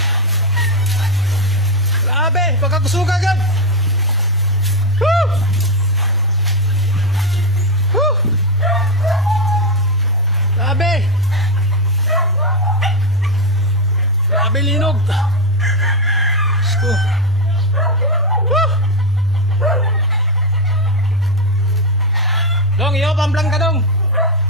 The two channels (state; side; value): normal; both; correlation 0.08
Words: Grabe, pagkakusuga agad! Woo! Woo! Grabe! Grabe, linog! Diyos ko! Woo! Dong, iyo pang blank ka dong.